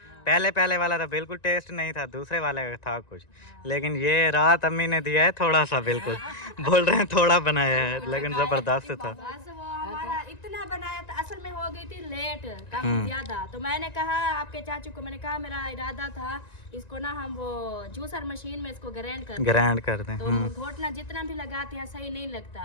पहले वाला तो बिल्कुल टेस्ट नहीं था, दूसरे वाले का था कुछ, लेकिन ये रात अम्मी ने दिया है थोड़ा सा, बिल्कुल बोल रहे हैं थोड़ा बनाया है, लेकिन जबरदस्त था। बस वो हमारा इतना बनाया था, असल में हो गई थी लेट काफी ज्यादा। तो मैंने कहा आपके चाचू को, मैंने कहा मेरा इरादा था इसको ना हम वो जूसर मशीन में इसको ग्राइंड कर दें। तो घोटना जितना भी लगाते हैं सही नहीं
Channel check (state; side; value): late; right; 1.9 ms